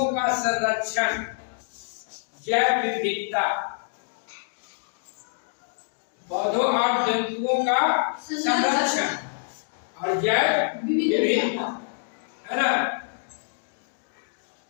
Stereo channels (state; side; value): silent; right; digital silence